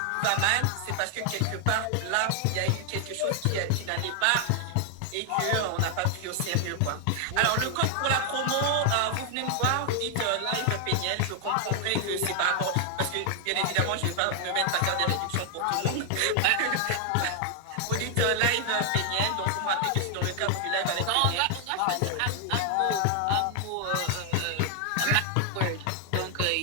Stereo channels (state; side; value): different; both; correlation 0.00